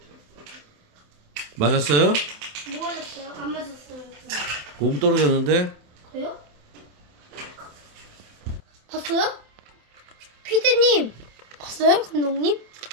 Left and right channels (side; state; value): left; late; 27 ms